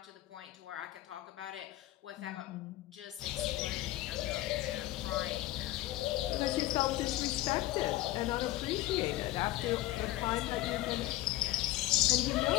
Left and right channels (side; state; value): right; quieter; 16.1 dB